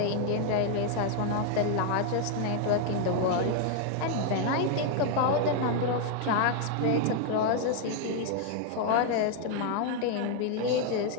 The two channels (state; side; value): different; both; correlation 0.00